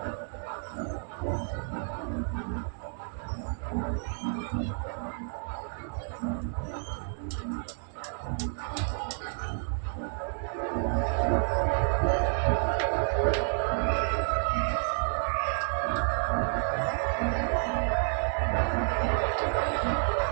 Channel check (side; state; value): left; silent; 58 dB below the other